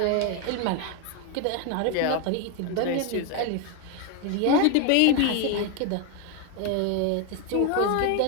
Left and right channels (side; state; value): both; different; correlation 0.01